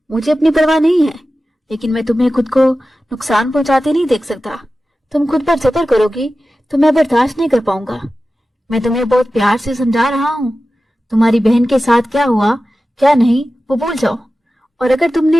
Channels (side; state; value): both; normal; correlation 0.94